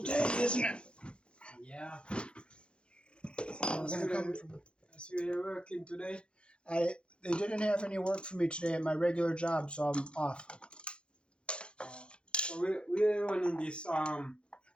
day, isn't it? Yeah. We're gonna come from. So you're working today? They didn't have any work for me today at my regular job, so I'm off. So we're running this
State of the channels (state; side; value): late; right; 0.056 ms